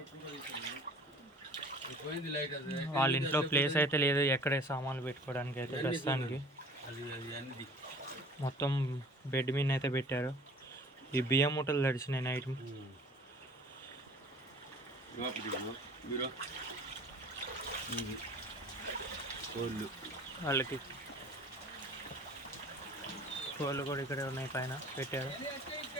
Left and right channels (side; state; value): both; normal; correlation 0.47